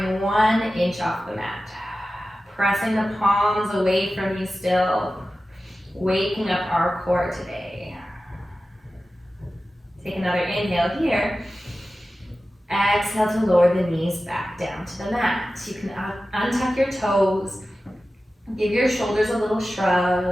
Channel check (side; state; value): both; normal; correlation 0.95